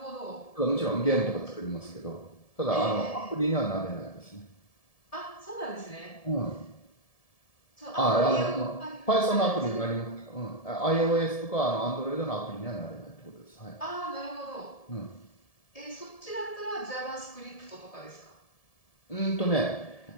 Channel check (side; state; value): right; late; 1.7 ms